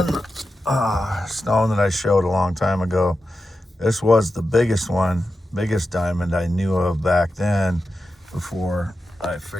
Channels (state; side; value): normal; both; correlation 0.91